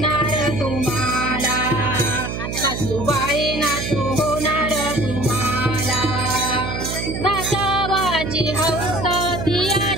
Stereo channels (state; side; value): noise; right; hum, 5 dB below the sound